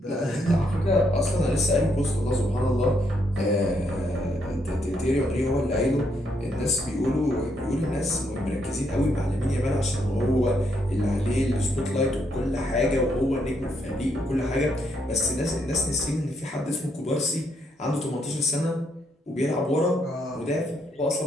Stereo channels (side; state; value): both; normal; correlation 0.75